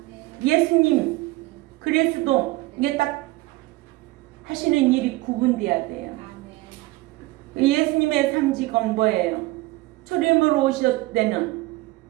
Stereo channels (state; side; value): quieter; left; 20.2 dB